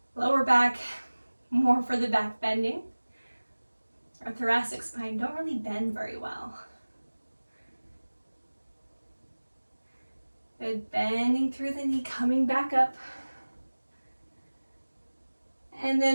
Lower back, more for the back bending. Our thoracic spine don't really bend very well. Good, bending through the knee, coming back up. And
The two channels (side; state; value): both; inverted; correlation -1.00